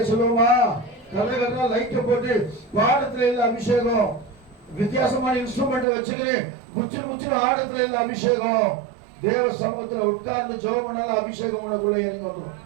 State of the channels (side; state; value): left; drops out; at 5.9 s